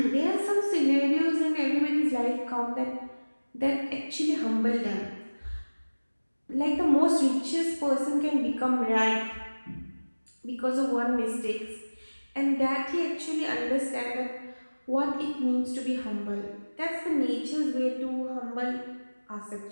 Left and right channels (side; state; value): both; inverted; correlation -1.00